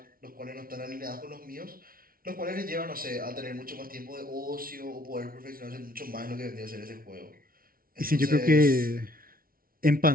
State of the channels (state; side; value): late; left; 0.43 ms